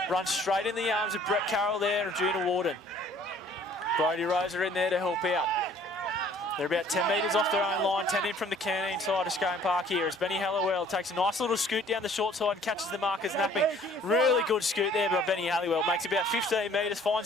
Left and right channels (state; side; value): normal; both; correlation 0.56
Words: Runs straight in the arms of Brett Carroll there and Juna Warden. Brodie Rose are in there to help out. They're about 10 metres off their own line, 10 in from the canteen side of Scone Park here as Benny Halliwell takes a nice little scoot down the short side and catches the markers napping. Really good scoot there by Benny Halliwell. Makes about 15 metres,